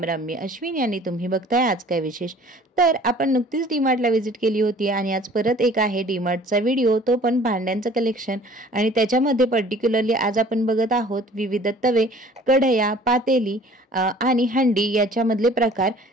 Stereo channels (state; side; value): normal; both; correlation 0.51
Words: राम. मी अश्विनी आणि तुम्ही बघताय आज काय विशेष. तर आपण नुकतीच डीमार्टला व्हिजिट केली होती आणि आज परत एक आहे डीमार्टचा व्हिडिओ, तो पण भांड्यांचं कलेक्शन. आणि त्याच्यामध्ये पर्टिक्युलरली आज आपण बघत आहोत विविध तवे, कढया, पातेली आणि हंडी याच्यामधले प्रकार,